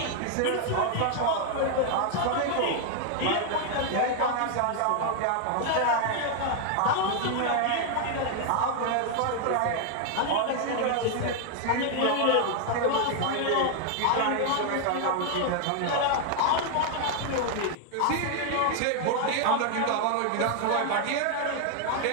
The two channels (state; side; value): different; both; correlation 0.00